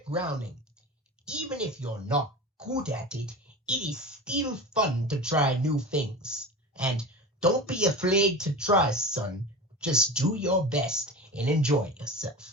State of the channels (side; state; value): both; normal; correlation 0.30